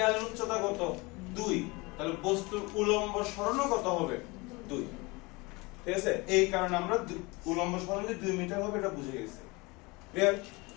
উচ্চতা কত 2 তাহলে বস্তুর উলম্ব সরণও কত হবে 2 ঠিক আছে এই কারণে আমরা উলম্ব সরণ যে 2 মিটার হবে এটা বুঝে গেছি ক্লিয়ার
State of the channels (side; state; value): right; quieter; 25.3 dB